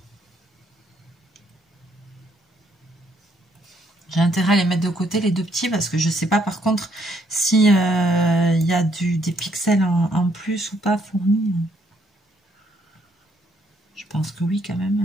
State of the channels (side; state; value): both; normal; correlation 0.70